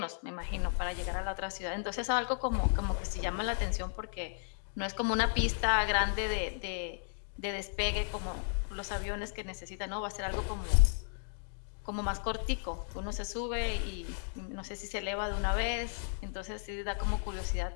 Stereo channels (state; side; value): silent; right; digital silence